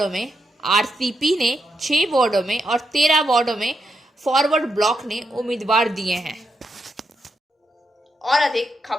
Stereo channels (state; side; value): normal; both; correlation 0.82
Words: में, RCP ने 6 वार्डों में और 13 वार्डों में फॉरवर्ड ब्लॉक ने उम्मीदवार दिए हैं। और अधिक